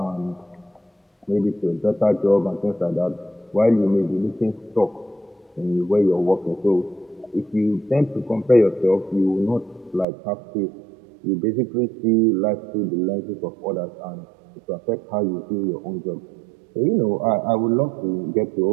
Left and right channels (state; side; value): drops out; left; at 10.1 s